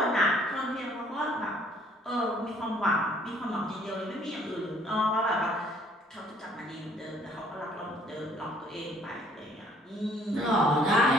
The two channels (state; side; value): normal; both; correlation 0.60